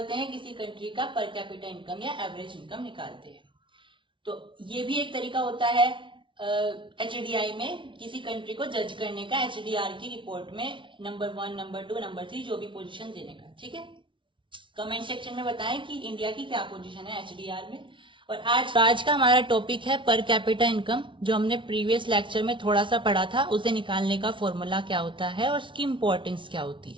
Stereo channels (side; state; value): left; late; 0.24 ms